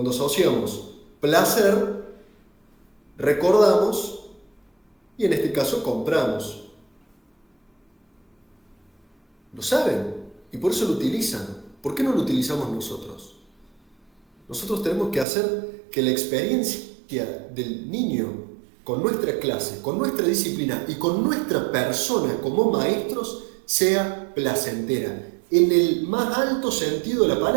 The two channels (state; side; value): drops out; left; at 15.2 s